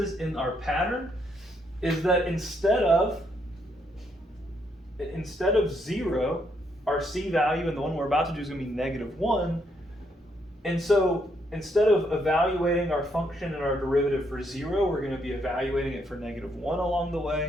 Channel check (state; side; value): normal; both; correlation 0.74